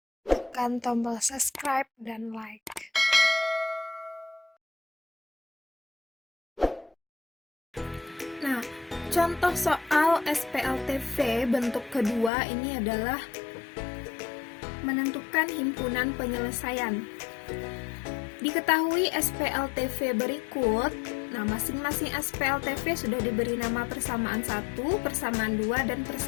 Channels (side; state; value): right; drops out; at 12.3 s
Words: tekan tombol subscribe dan like. Nah, contoh soal SPLTV bentuk kedua ini adalah menentukan himpunan penyelesaian. Diketahui SPLTV berikut. Nah, masing-masing SPLTV sudah diberi nama persamaan 1, persamaan 2, dan